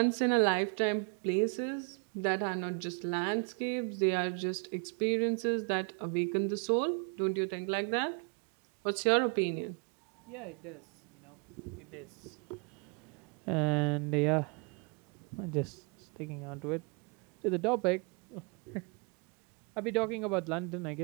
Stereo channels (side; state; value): left; quieter; 34.2 dB